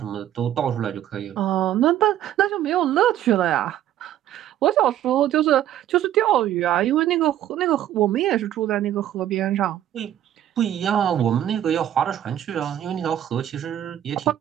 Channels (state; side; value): quieter; left; 11.7 dB